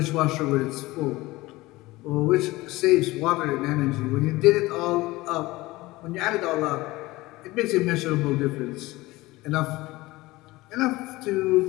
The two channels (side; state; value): right; quieter; 19.8 dB